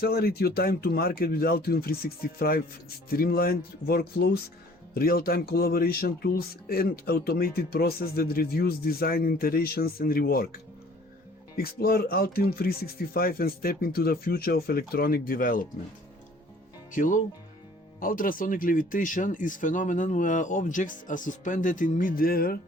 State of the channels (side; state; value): both; normal; correlation 0.53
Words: your time to market with Altium 365 streamlined workflows, real-time collaboration tools, and automated process that reduce design iterations and rework. Explore Altium 365 and step into the future of electronic development. Hello? Ultrasonic levitation is a phenomenon where objects are suspended in mid-air